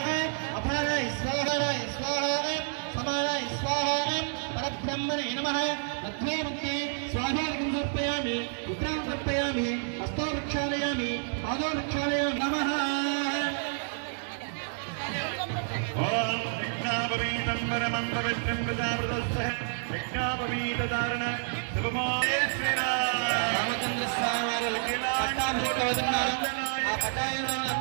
అపానాయ స్వాహాయ స్వాహ, సమానాయ స్వాహ, పరబ్రహ్మణే నమః. మధ్వే ముక్తే స్వాహోదకం సమర్పయామి, ఉత్తరాం సమర్పయామి, హస్తో ప్రక్షాళయామి, పాదో ప్రక్షాళయామి. నమః. ఓం యజ్ఞాపవీతం పరమం పవిత్రం ప్రజావృతస్య యజ్ఞాపవీతధారణ శుభమాయ శ్రీరామ్. రామచంద్ర స్వామి వారు పట్టాభిషేకం అవుతున్నారు. ఆ పట్టాభిషేకం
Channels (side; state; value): left; silent; 58 dB below the other